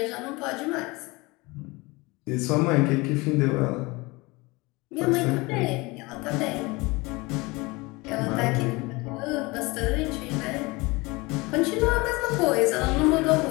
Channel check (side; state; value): right; quieter; 24.1 dB